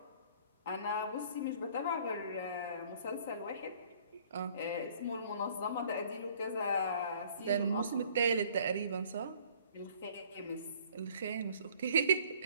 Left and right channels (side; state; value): both; inverted; correlation -0.57